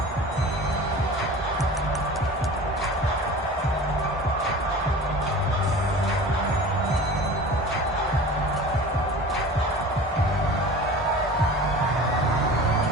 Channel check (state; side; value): normal; both; correlation 0.38